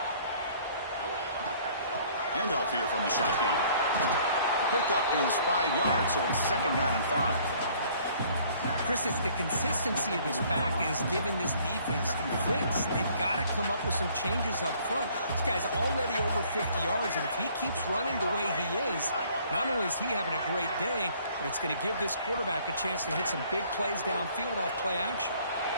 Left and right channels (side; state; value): both; inverted; correlation -0.58